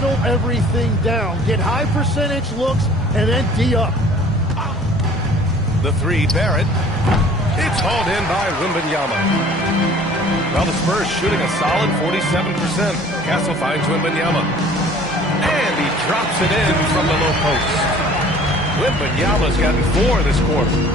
everything down. Get high percentage looks and then D up. The three, Barrett. It's hauled in by Wembanyama. Well, the Spurs shooting a solid 47%. Castle finds Wembanyama. And he drops it in from the low post. Wembanyama's gotten 4 this quarter.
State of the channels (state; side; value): normal; both; correlation 0.50